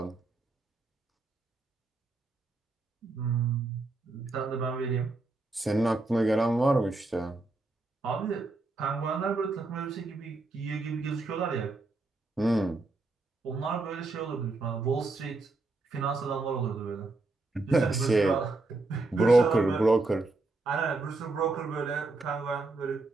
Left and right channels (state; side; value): quieter; left; 3.3 dB